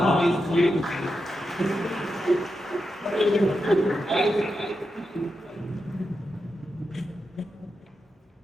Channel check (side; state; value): both; normal; correlation 0.88